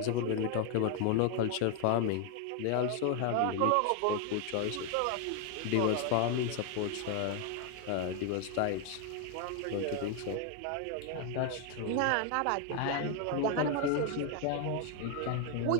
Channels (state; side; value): different; both; correlation 0.01